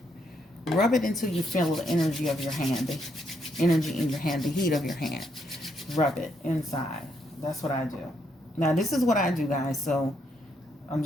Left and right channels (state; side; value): normal; both; correlation 0.75